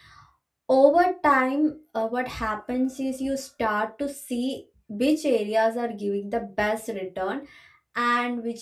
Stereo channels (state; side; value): identical; both; correlation 1.00